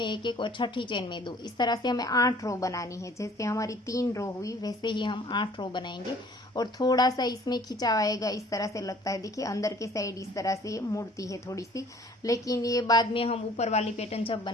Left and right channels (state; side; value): normal; both; correlation 0.54